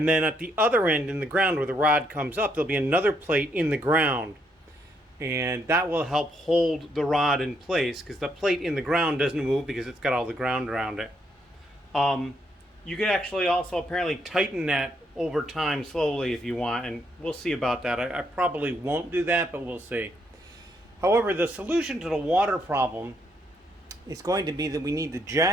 then at the other end in the ground where the rod comes up, there'll be another plate in the ground. And that will help hold the rod in place, because the plate in the ground doesn't move because it's got all the ground around it. You could actually also apparently tighten that over time slowly if you want, and we'll see about that. I probably won't do that, but we'll see. However, the solution to the water problem is going to be that we need to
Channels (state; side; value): normal; both; correlation 0.74